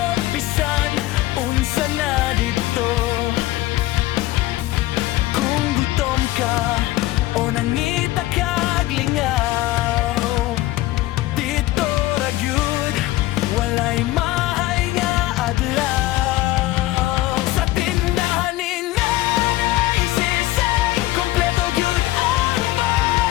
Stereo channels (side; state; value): right; quieter; 16.8 dB